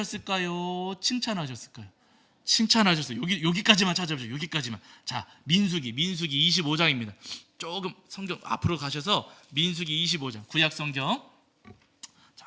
칭찬하셨을까요? 칭찬하셨어요. 여기까지만 찾아보세요. 여기까지만. 자, 민수기 25장입니다. 조금 성경 앞으로 가셔서 민수기 25장, 구약 성경.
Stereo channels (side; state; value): both; identical; correlation 1.00